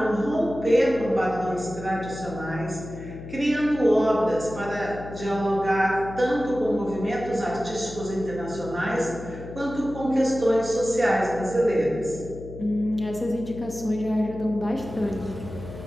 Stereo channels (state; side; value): noise; left; hum, 12 dB below the sound